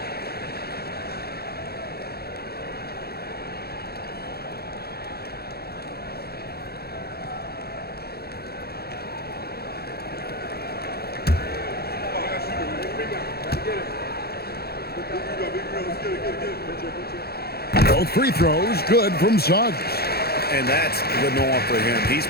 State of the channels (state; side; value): late; right; 0.46 ms